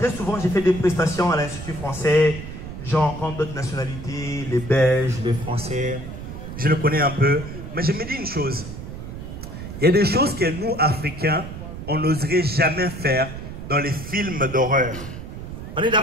souvent, j'ai fait des prestations à l'Institut français. J'en rencontre d'autres nationalités, les Belges, les Français. Je le connais un peu. Mais je me dis une chose. Il y a des choses que nous, Africains, on n'oserait jamais faire dans les films d'horreur. On est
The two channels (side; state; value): right; noise; rumble, 10 dB below the sound